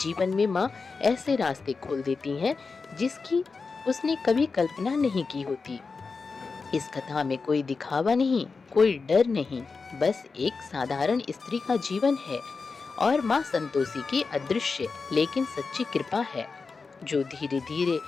में माँ ऐसे रास्ते खोल देती हैं जिसकी उसने कभी कल्पना नहीं की होती। इस कथा में कोई दिखावा नहीं, कोई डर नहीं, बस एक साधारण स्त्री का जीवन है और माँ संतोषी की अदृश्य लेकिन सच्ची कृपा है जो धीरे धीरे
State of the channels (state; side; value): quieter; right; 4.6 dB